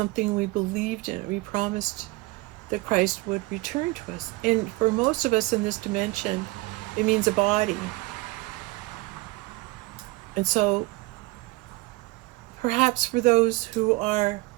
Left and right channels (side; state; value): left; quieter; 22.0 dB